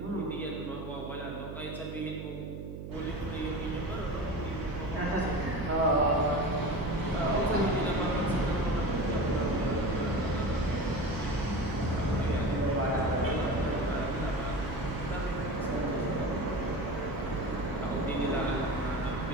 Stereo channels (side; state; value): right; noise; hum, 9 dB below the sound